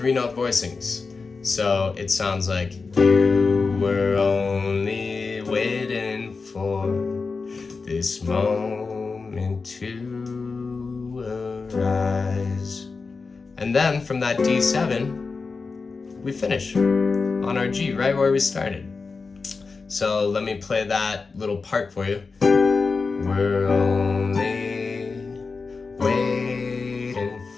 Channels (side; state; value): right; quieter; 4.4 dB